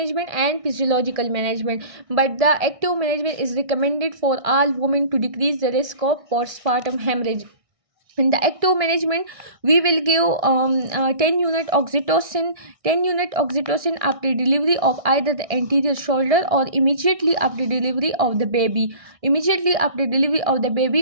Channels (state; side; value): late; left; 1.6 ms